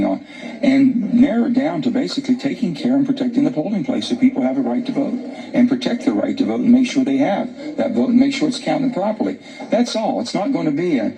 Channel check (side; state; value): both; identical; correlation 1.00